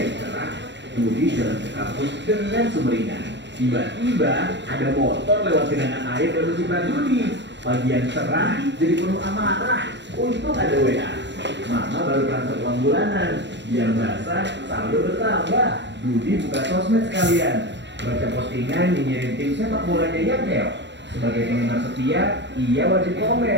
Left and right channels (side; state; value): left; late; 0.52 ms